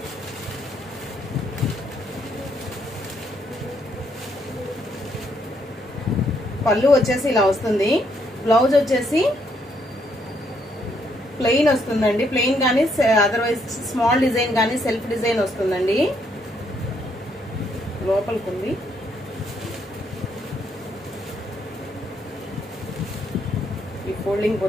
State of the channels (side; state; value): both; normal; correlation 0.73